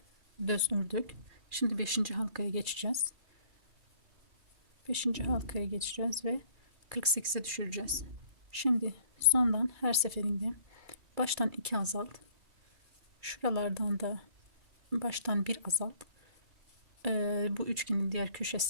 düz ördük. Şimdi 5. halkaya geçeceğiz. 5. halkaya geçeceğiz ve 48'e düşüreceğiz. Şimdi sondan her seferinde baştan 2 azalt. Şuralardan da baştan 1 azalt. Bu üçgenin diğer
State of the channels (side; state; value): left; late; 2.4 ms